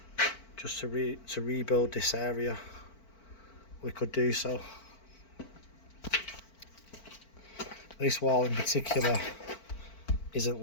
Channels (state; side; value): late; right; 4.5 ms